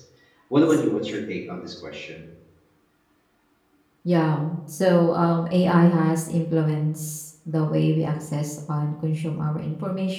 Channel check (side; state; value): both; identical; correlation 1.00